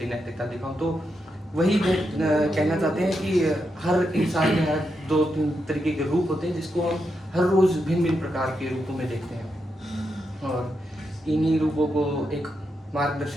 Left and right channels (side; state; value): both; normal; correlation 0.84